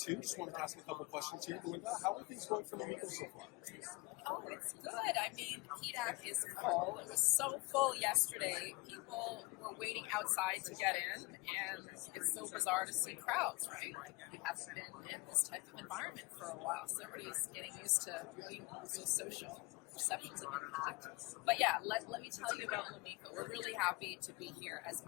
Just wanted to ask a couple questions here. Belinda, how are things going for Lomiko so far? Oh, it's good. I mean, PDAC is full. It was so full yesterday. People were waiting outside to get in, and it's so bizarre to see crowds, right? We haven't been in this type of environment for a while, so everybody's getting used to being so social. Perceptions have been hacked. But yeah, let me tell you about Lomiko. We're really happy to be here as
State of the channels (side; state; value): right; quieter; 24.8 dB